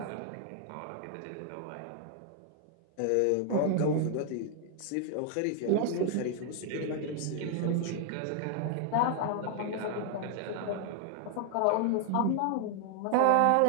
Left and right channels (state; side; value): different; both; correlation 0.00